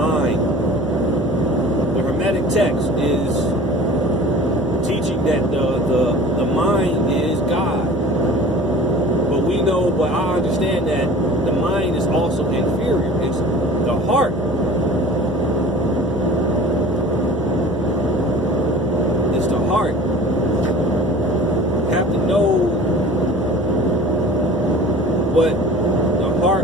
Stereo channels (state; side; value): normal; both; correlation 0.43